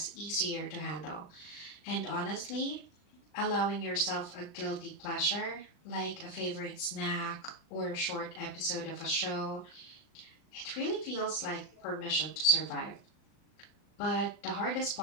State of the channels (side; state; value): right; late; 40 ms